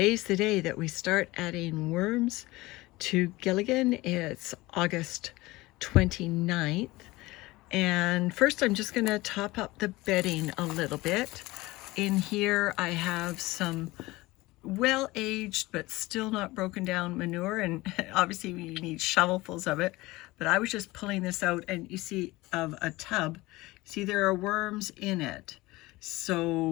the day that we start adding worms to Gilligan. It's August 29th. And first I'm just gonna top up the bedding a little bit. In here I have some well-aged but still not broken down manure, and obviously we need shovelfuls of it. But I was just pulling this out and you see of a tub, see there are worms in it.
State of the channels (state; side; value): quieter; right; 20.2 dB